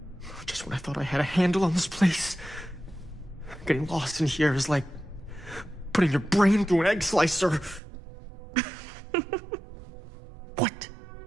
Just when I thought I had a handle on this place. Getting lost in here is like putting your brain through an egg slicer. What?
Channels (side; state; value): left; drops out; at 7.8 s